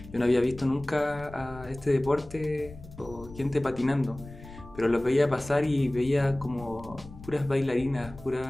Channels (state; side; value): noise; left; rumble, 17 dB below the sound